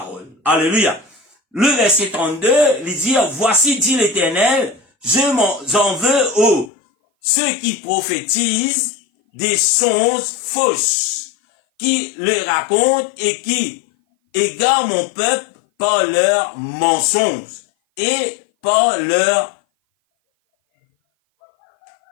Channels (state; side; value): drops out; right; at 6.7 s